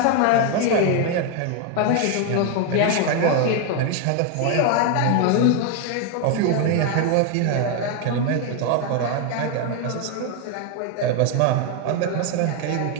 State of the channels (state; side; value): different; both; correlation 0.01